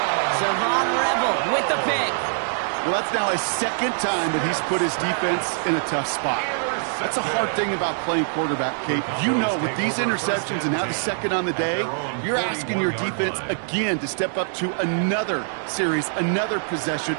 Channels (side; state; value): left; silent; digital silence